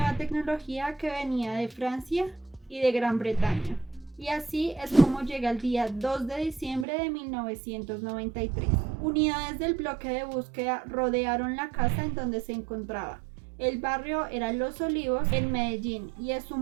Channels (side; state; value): left; drops out; at 6.9 s